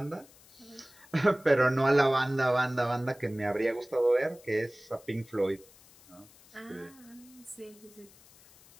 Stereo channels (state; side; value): noise; left; hiss, 25 dB below the sound